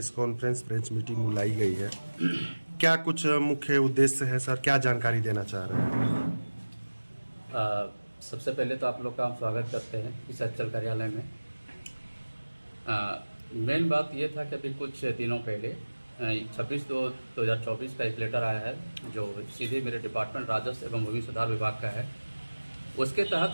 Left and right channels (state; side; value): inverted; both; correlation -1.00